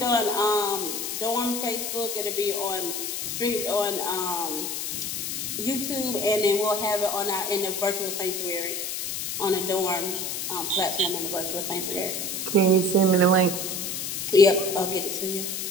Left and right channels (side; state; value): left; noise; hiss, 3 dB below the sound